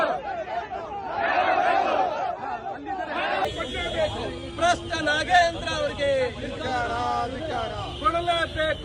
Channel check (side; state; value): both; identical; correlation 1.00